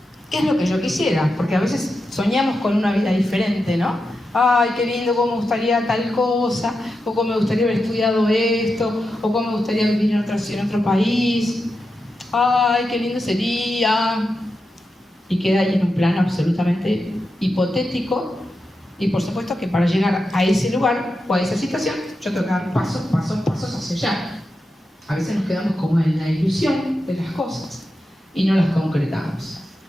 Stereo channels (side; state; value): both; normal; correlation 0.89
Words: ¿qué es lo que yo quisiera? Porque a veces soñamos con una vida diferente, ¿no? Ay, qué lindo, cómo me gustaría tal cosa, o cómo me gustaría haber estudiado esto, o cómo me gustaría vivir en otro país. Ay, qué lindo sería. Y queda ahí en un plano absolutamente hipotético, y por supuesto que para llegar a ese lugar o a esa situación yo tengo que dar pasos hacia allá. A veces nos quedamos como en la ilusión de las cosas y no las concretamos.